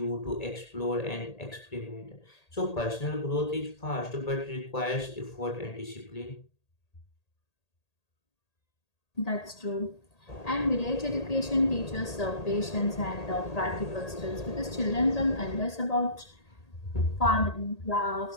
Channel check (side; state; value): right; late; 1.8 ms